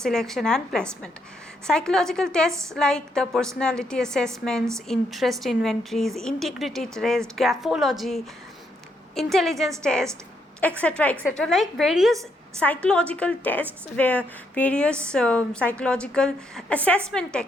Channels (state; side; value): normal; both; correlation 0.76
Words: and placement. Psychological tests like the personality assessments, interest inventories, integrity test, graphology, intelligence test, etc., like various psychological tests where various psychological assessment